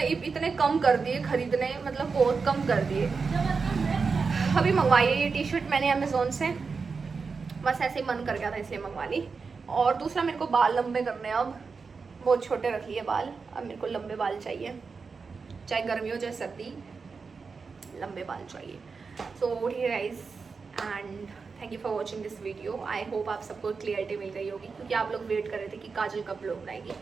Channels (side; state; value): left; quieter; 4.9 dB